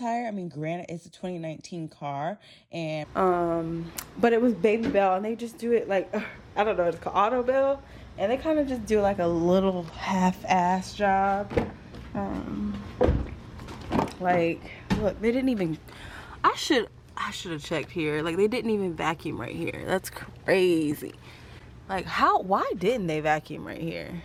I mean, granted, it's a 2019 car, and but it was Baby Bell, and they just do it like, I don't know, it's called Auto Bell, and they kind of just do like a little half-ass job. Like, look, they didn't even, I should have checked here. Like, they didn't even vacuum right here. That's crazy. Like, why didn't they vacuum right here?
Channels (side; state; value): both; identical; correlation 1.00